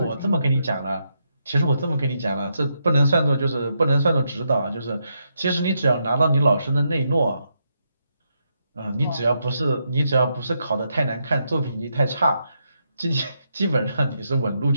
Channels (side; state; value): both; inverted; correlation -0.80